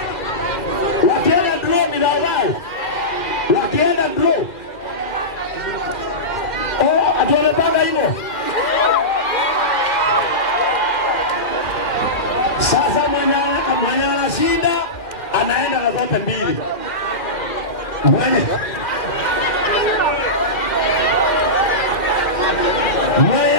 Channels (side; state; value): right; late; 2.2 ms